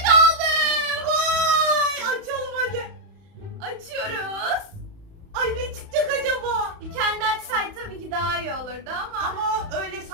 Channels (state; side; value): late; left; 31 ms